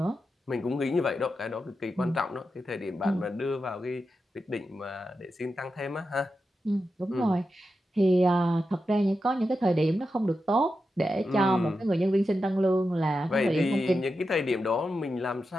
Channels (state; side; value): normal; both; correlation 0.89